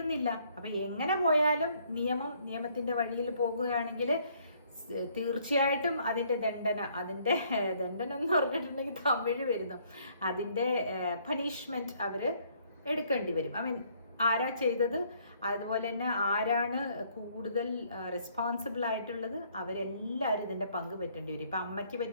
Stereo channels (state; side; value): inverted; both; correlation -0.65